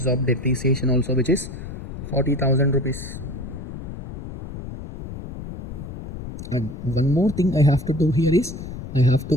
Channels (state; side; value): noise; left; rumble, 10 dB below the sound